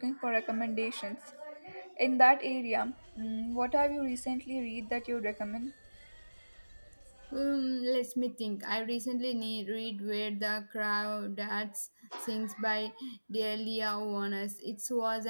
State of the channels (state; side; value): inverted; both; correlation -1.00